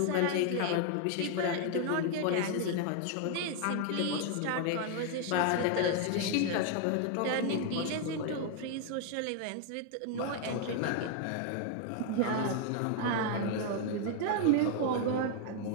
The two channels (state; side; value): different; both; correlation 0.00